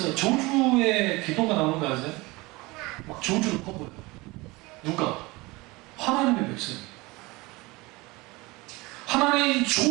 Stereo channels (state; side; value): quieter; left; 22.9 dB